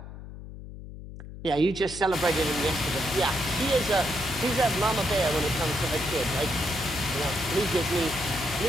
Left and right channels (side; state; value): left; noise; hum, 13 dB below the sound